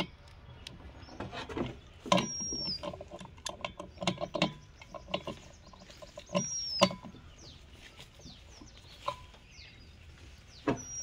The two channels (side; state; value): both; identical; correlation 1.00